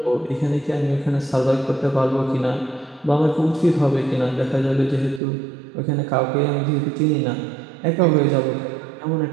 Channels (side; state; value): left; drops out; at 5.2 s